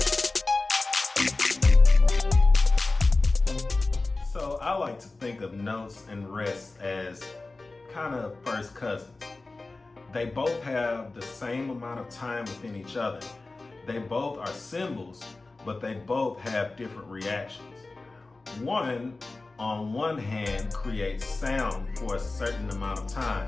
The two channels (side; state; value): right; quieter; 3.4 dB